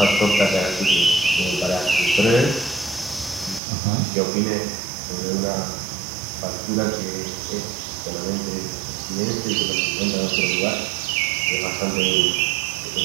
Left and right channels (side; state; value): left; drops out; at 3.6 s